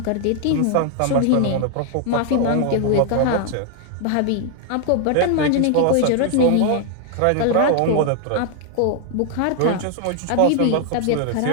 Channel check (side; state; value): both; different; correlation 0.00